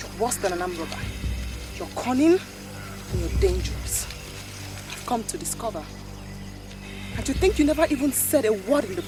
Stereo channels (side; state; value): both; identical; correlation 1.00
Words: worse than an armed robber. You're cunning and you're dangerous. I've come to discover. And to think you never even said a word in the